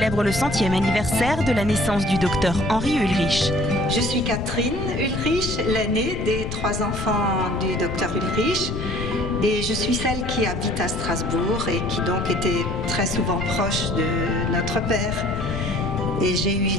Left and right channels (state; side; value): noise; left; rumble, 6 dB below the sound